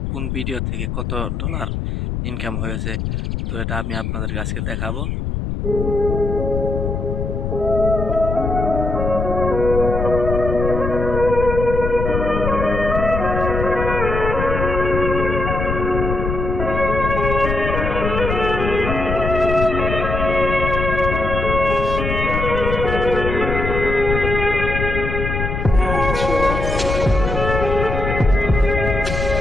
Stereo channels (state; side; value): noise; left; rumble, 3 dB below the sound